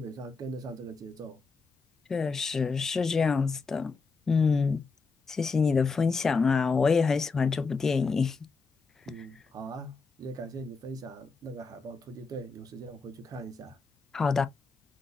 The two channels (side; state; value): right; quieter; 4.5 dB